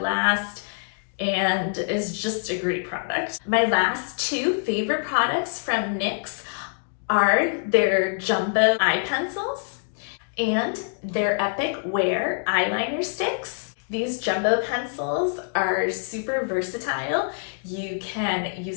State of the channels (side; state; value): right; silent; digital silence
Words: and is just a great product. My last two favorite products from NYX are their jumbo eye pencils and their Epic Wear eyeliner sticks. These jumbo pencils are super versatile. You can